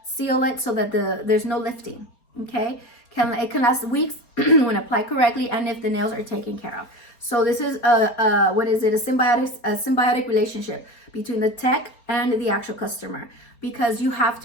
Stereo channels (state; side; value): late; right; 4.3 ms